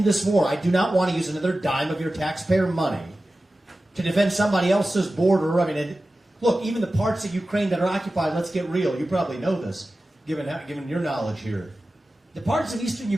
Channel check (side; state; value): both; normal; correlation 0.95